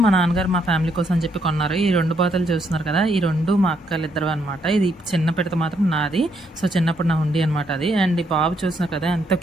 మా నాన్నగారు మా ఫ్యామిలీ కోసం అని చెప్పి కొన్నారు. ఈ 2 బాతులు చూస్తున్నారు కదా, ఈ 2 మా అక్కలిద్దరు అనమాట. ఇది చిన్న పిడత మాత్రం నాది. సో చిన్నప్పుడు నా హుండీ అనమాట అది. అండ్ ఈ బాబు చూస్తున్నారు కదా ఎంత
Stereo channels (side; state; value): both; normal; correlation 0.74